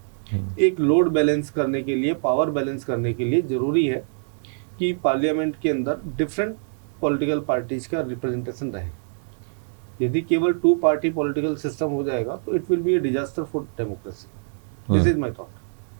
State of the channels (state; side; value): silent; left; digital silence